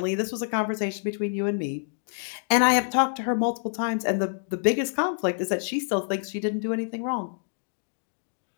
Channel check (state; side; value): silent; right; digital silence